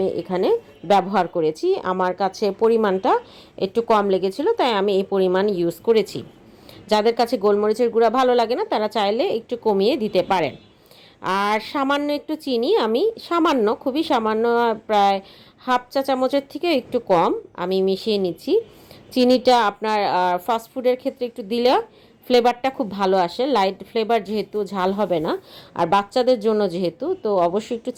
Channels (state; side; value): identical; both; correlation 1.00